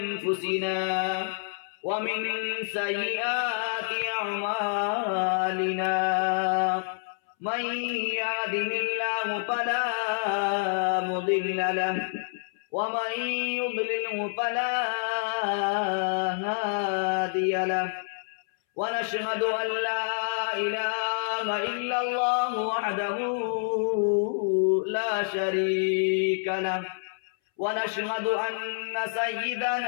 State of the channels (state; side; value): silent; right; 60 dB below the other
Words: ومن سيئات أعمالنا من يهده الله فلا مضل له ومن يضلله فلا هادي له ونشهد أن لا إله إلا الله وحده لا شريك له ونشهد أن